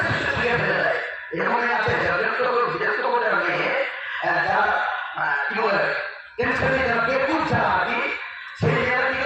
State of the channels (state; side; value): identical; both; correlation 1.00